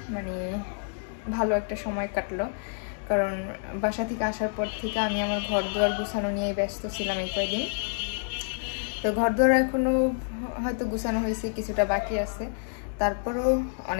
মানে ভালো একটা সময় কাটলো কারণ বাসা থেকে আসার পর থেকে আমি আমার ঘর দুয়ার গুছানো নিয়ে ব্যস্ত ছিলাম এই কয়েকদিন তো ঘর দুয়ার এখনো হয়তো গুছানো হয়েছে কিছুটা বাকি আছে তারপরও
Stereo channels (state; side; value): silent; right; digital silence